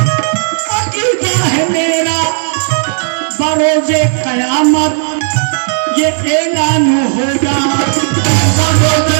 अकीदा है मेरा, बरोज़े क़यामत ये ऐलान होगा, बरोज़े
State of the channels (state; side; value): silent; left; digital silence